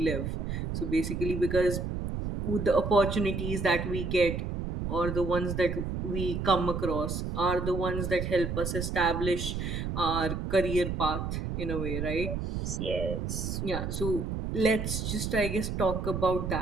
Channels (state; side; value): noise; right; rumble, 3 dB below the sound